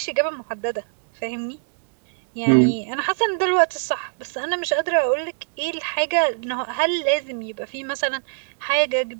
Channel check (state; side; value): silent; left; digital silence